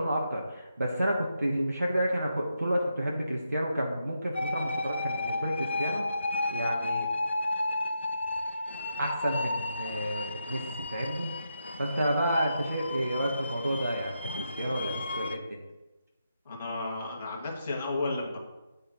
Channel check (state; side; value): inverted; both; correlation -0.83